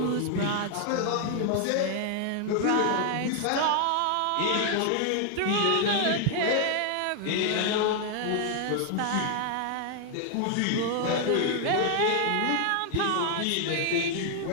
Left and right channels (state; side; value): different; both; correlation 0.00